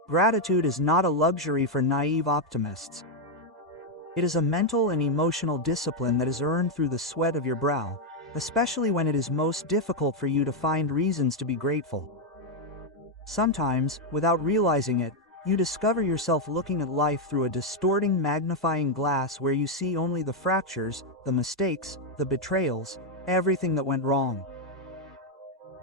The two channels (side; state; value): both; normal; correlation 0.01